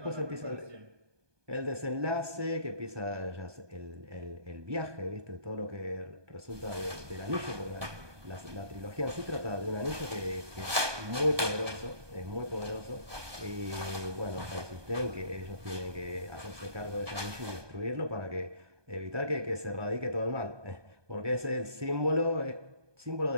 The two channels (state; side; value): late; left; 1.2 ms